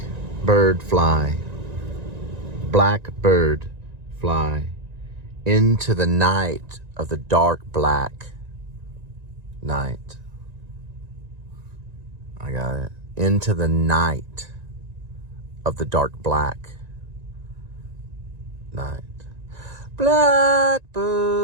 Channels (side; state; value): left; late; 1.9 ms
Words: fly. Blackbird fly into the night of the dark black night. I got it. Into the night of the dark black night.